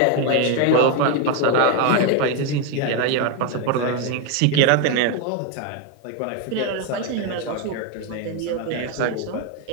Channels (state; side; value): different; both; correlation 0.02